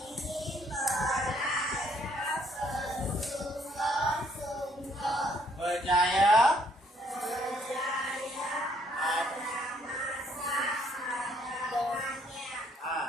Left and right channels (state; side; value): normal; both; correlation 0.67